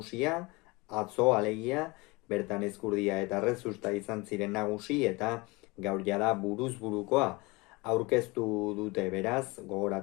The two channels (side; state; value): right; quieter; 24.7 dB